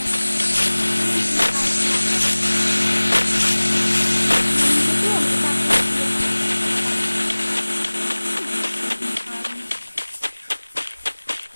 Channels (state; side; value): inverted; both; correlation -1.00